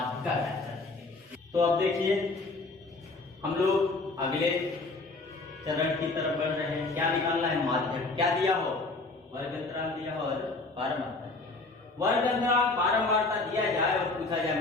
करेंगे। तो अब देखिए हम लोग अगले चरण की तरफ बढ़ रहे हैं। क्या निकालना है, माध्यक। क्या दिया हो, वर्ग अंतराल दिया हो और बारंबारता। वर्ग अंतराल बारंबारता दिया जाए और पूछा जाए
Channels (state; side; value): quieter; right; 3.4 dB